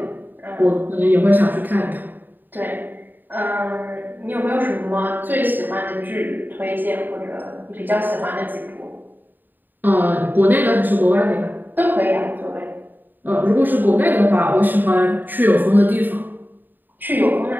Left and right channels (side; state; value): left; late; 0.090 ms